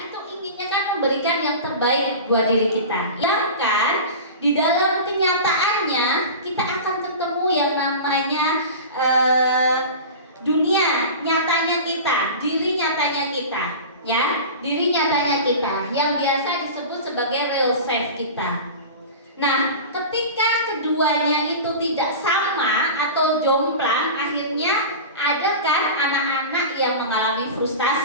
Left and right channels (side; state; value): both; inverted; correlation -0.32